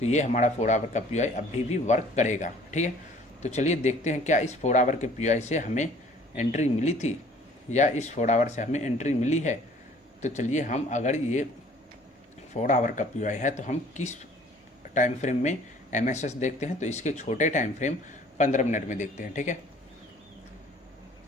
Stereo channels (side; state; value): both; normal; correlation 0.54